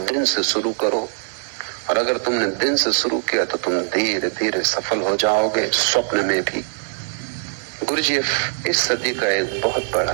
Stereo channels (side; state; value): left; silent; digital silence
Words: दिन से शुरू करो, और अगर तुमने दिन से शुरू किया तो तुम धीरे धीरे सफल हो जाओगे, स्वप्न में भी। गुरुजीएफ इस सदी का एक बहुत